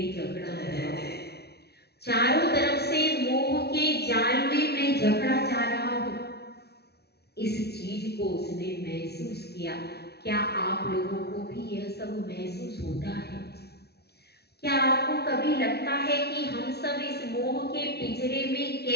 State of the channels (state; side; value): late; right; 0.47 ms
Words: जकड़ा हुआ हूं, चारों तरफ से मोह के जाल में मैं जकड़ा जा रहा हूं। इस चीज को उसने महसूस किया। क्या आप लोगों को भी यह सब महसूस होता है? क्या आपको कभी लगता है कि हम सब इस मोह के पिंजरे में